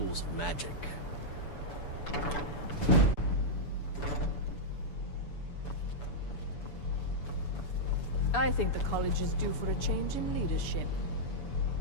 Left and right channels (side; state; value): right; late; 6.9 ms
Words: of magic. I think the college is due for a change in leadership.